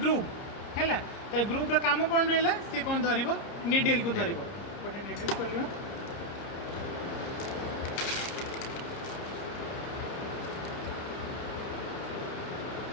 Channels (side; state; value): right; late; 30 ms